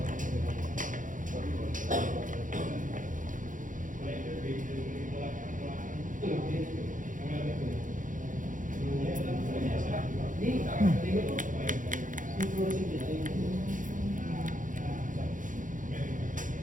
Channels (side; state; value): left; late; 0.38 ms